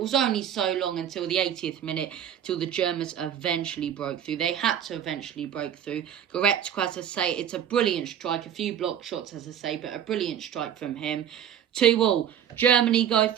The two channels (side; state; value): left; quieter; 9.6 dB